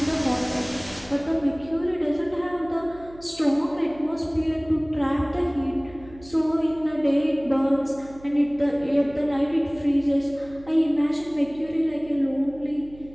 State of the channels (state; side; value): noise; right; hum, 21 dB below the sound